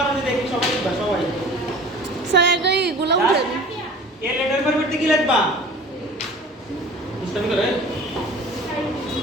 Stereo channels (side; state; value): both; normal; correlation 0.43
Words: দেখি সবাই লিখবা সবাই স্যার আগে এগুলো উঠেন এ লেটার পরিবর্তে কি লিখবা বুঝতে পারলে